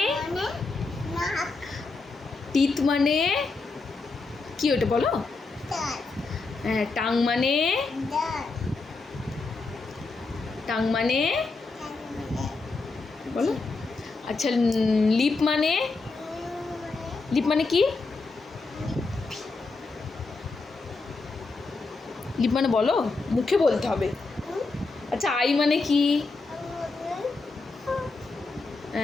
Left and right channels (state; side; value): quieter; right; 3.8 dB